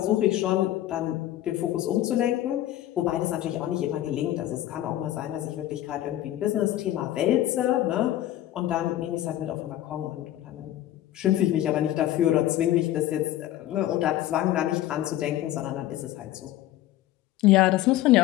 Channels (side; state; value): right; quieter; 13.9 dB